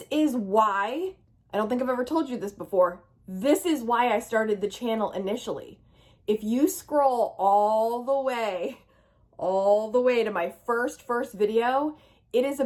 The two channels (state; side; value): identical; both; correlation 1.00